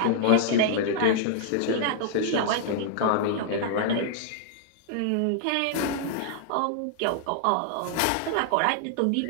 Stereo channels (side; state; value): both; different; correlation -0.01